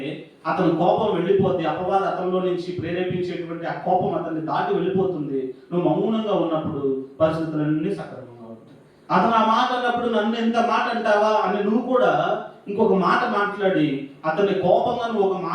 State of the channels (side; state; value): both; identical; correlation 1.00